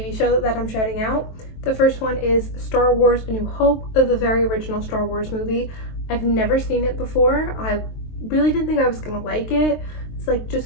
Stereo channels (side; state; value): right; late; 23 ms